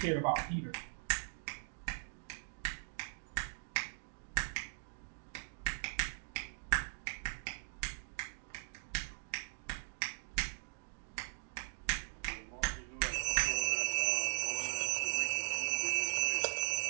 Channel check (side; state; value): left; silent; digital silence